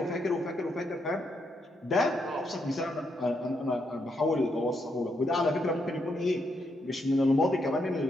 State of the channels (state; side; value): normal; both; correlation 0.78